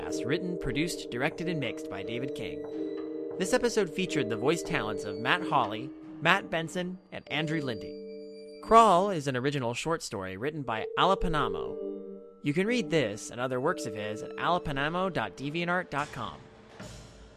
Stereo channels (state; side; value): identical; both; correlation 1.00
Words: written, produced, directed, and mixed by David King. This episode featured the voice talents of Matt Holley, Matt Benson, and Andrew Linde. Crawl is an original short story written by Alapanamo. You can read this and other works of his at alapanamo.deviantart.com.